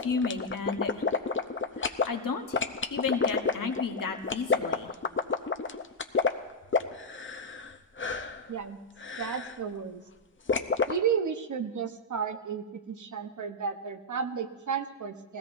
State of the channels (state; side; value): normal; both; correlation -0.05